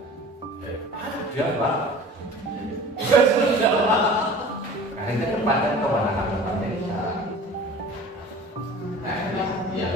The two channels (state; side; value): normal; both; correlation 0.42